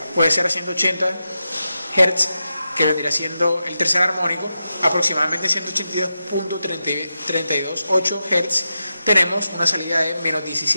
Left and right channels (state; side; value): inverted; both; correlation -0.89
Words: puede ser a 180 Hz, que vendría siendo el tercer armónico, aproximadamente 182.328 Hz, tenemos una salida de menos